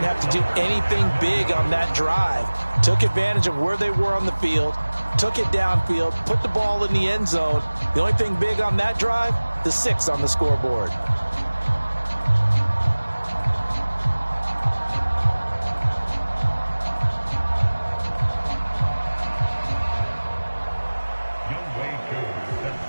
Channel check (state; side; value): inverted; both; correlation -1.00